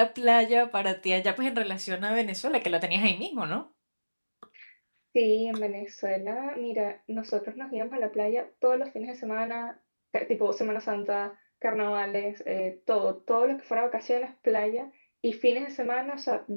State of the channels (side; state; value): both; inverted; correlation -1.00